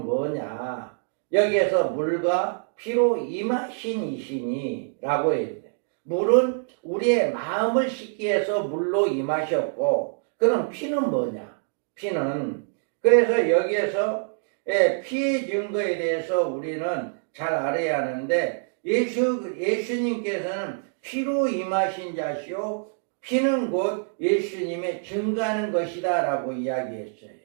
뭐냐? 여기에서 물과 피로 임하신 이시니 라고 해야 돼. 물은 우리의 마음을 씻기 위해서 물로 임하셨고, 그럼 피는 뭐냐? 피는, 그래서 여기에서 피의 증거에 대해서 우리는 잘 알아야 하는데, 예수님께서는 피로 임하신 자시오, 피는 곧 예수님의 증거하는 것이다 라고 이야기했어요.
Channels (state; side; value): silent; left; digital silence